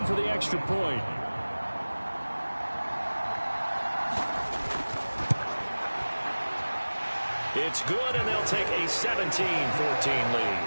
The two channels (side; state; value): both; inverted; correlation -1.00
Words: for the extra point. It's good, and they'll take a 17-14